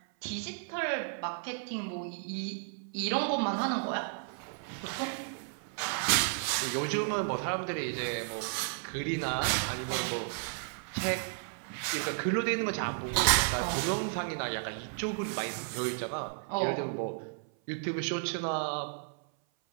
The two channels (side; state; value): left; silent; 55 dB below the other